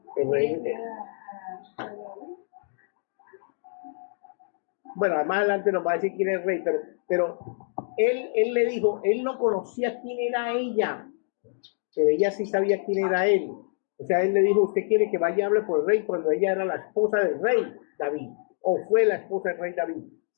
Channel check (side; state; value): right; silent; digital silence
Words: El rey... Bueno, más adelante nos va a decir quién es el rey, pero él le dijo, él no conocía quién era ella, pero ella sí sabía quién era él. O sea, él le dijo, usted quiere que vaya y hable por el rey cuando ella era la esposa del rey David, o fue la esposa del rey David.